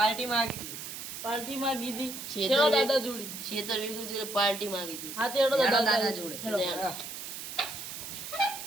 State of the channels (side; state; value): right; noise; hiss, 8 dB below the sound